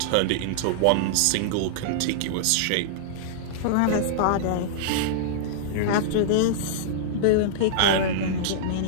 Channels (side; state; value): both; different; correlation -0.02